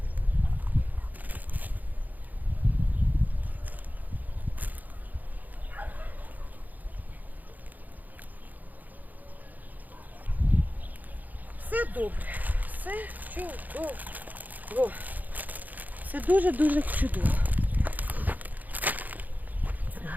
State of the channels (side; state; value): left; late; 0.082 ms